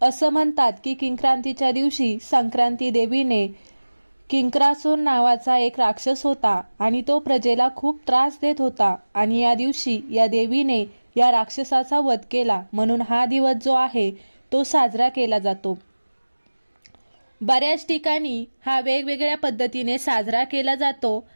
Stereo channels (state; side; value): inverted; both; correlation -1.00